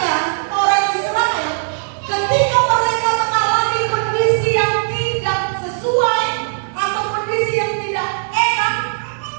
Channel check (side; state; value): left; silent; digital silence